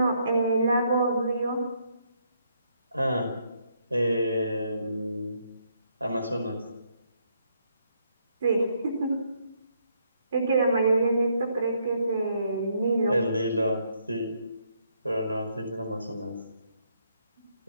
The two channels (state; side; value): inverted; both; correlation -0.73